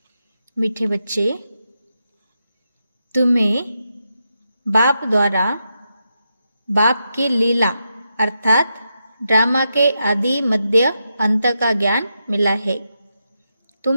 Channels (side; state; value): both; inverted; correlation -0.85